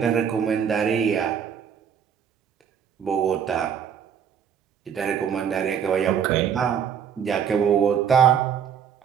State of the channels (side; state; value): left; quieter; 7.9 dB